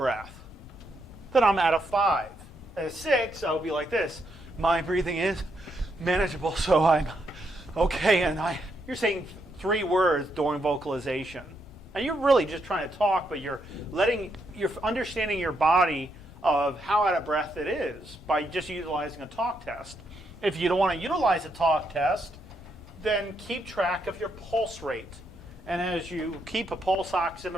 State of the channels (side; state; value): both; normal; correlation 0.78